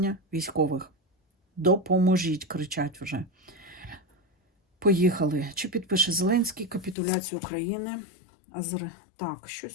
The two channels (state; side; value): drops out; right; at 7.0 s